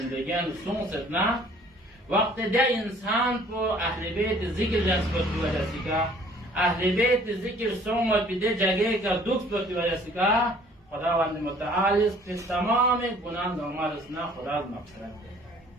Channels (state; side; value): normal; both; correlation 0.55